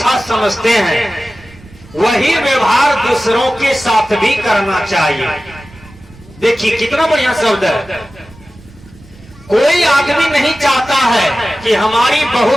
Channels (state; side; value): noise; right; rumble, 23 dB below the sound